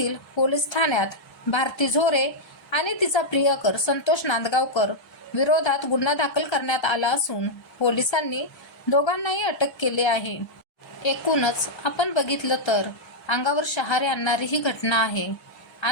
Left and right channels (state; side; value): late; right; 1.3 ms